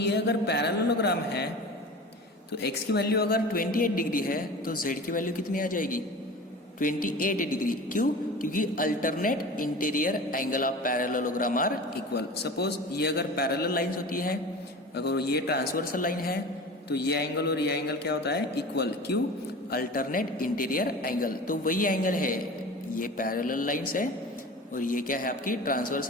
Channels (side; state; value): both; normal; correlation 0.35